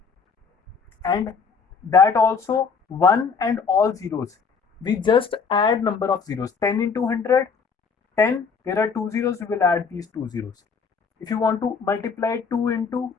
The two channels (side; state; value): right; quieter; 5.5 dB